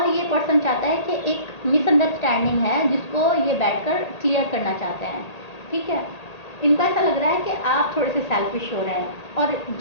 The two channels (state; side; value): late; right; 1.8 ms